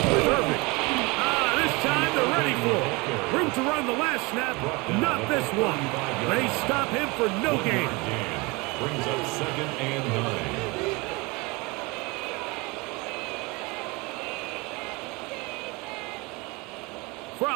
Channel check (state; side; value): quieter; left; 25.9 dB